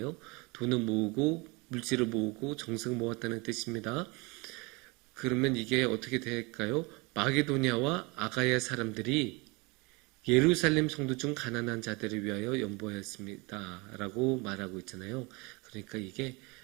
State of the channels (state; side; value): quieter; left; 27.0 dB